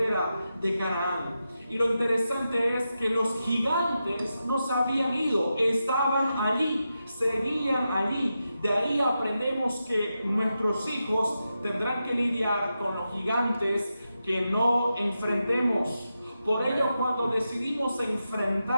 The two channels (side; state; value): both; inverted; correlation -0.89